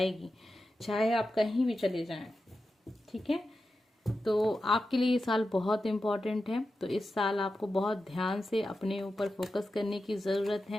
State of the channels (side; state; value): both; normal; correlation 0.91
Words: चाहे आप कहीं भी चले जाएं, ठीक है। तो आपके लिए ये साल बहुत इम्पोर्टेंट है। तो इस साल आपको बहुत ध्यान से अपने ऊपर फोकस करने की ज़रूरत